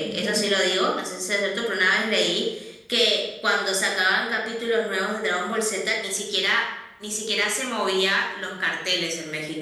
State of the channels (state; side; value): identical; both; correlation 1.00